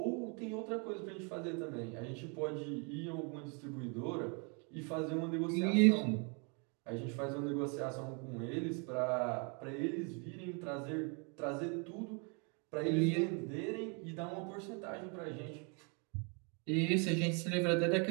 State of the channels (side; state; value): left; quieter; 35.5 dB